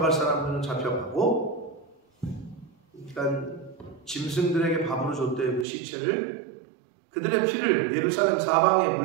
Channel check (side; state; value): left; drops out; at 5.7 s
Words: 사람들은 잡혀가고, 그러니까 짐승들에게 밥으로 줬대요. 그 시체를. 그들의 피를 예루살렘 사방에